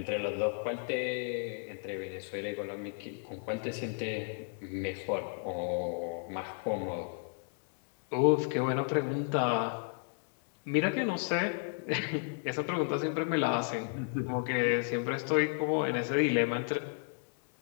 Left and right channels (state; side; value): silent; right; 55 dB below the other